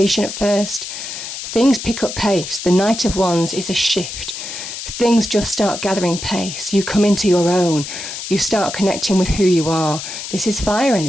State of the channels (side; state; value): left; noise; hiss, 8 dB below the sound